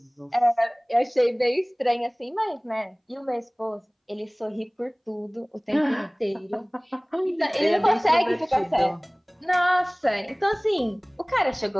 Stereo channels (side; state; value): both; identical; correlation 1.00